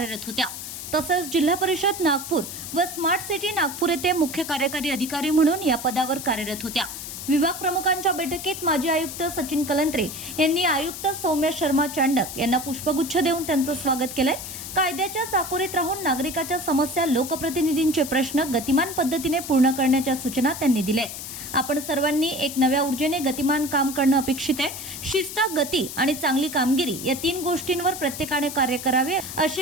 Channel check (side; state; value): left; noise; hiss, 9 dB below the sound